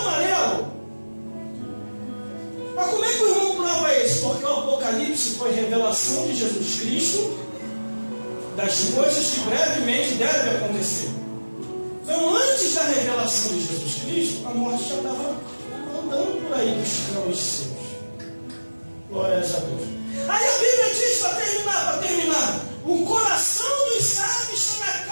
amarelo. Mas como é que o irmão prova isso? Porque o Apocalipse foi revelação de Jesus Cristo das coisas que brevemente devem acontecer. Então, antes da revelação de Jesus Cristo, a morte já estava andando por aí buscando os seus. Glórias a Deus. Aí a Bíblia diz, para terminar, o coração dos sábios está na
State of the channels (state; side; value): inverted; both; correlation -1.00